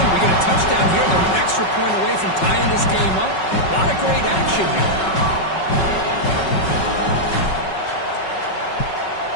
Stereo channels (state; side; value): late; right; 5.4 ms